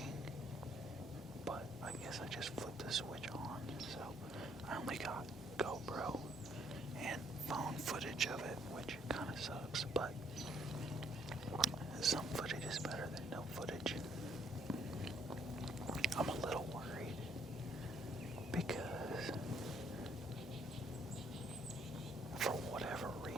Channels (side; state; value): both; normal; correlation 0.67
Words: but I guess I just flipped the switch on. So I only got GoPro and phone footage of it, which kind of sucks, but some footage is better than no footage. I'm a little worried because for whatever